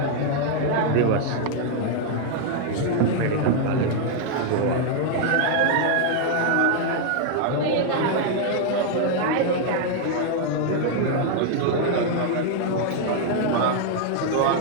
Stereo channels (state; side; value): different; both; correlation 0.00